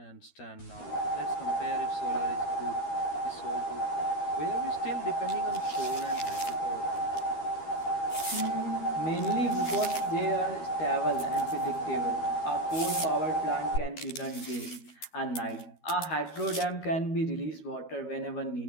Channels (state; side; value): late; right; 12 ms